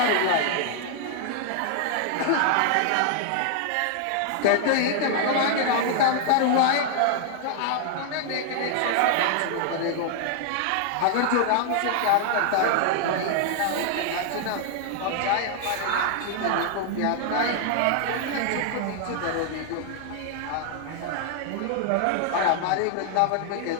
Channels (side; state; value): both; different; correlation 0.00